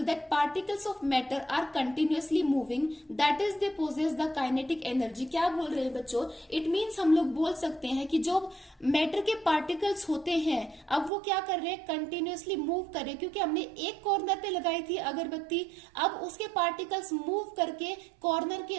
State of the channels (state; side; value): drops out; left; at 11.1 s